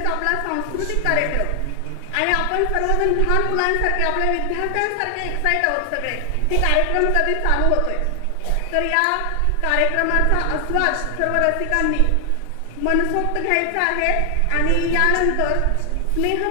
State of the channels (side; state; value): both; different; correlation 0.00